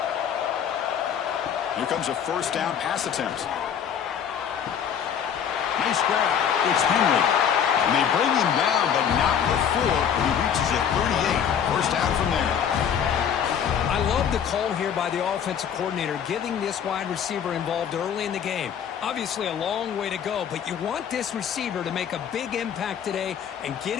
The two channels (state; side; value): quieter; right; 8.2 dB